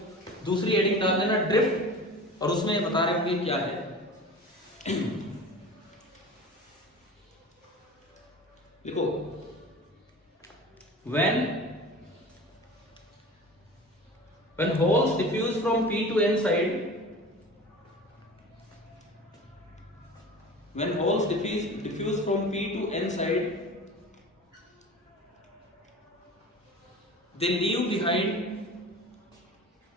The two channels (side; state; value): both; normal; correlation 0.37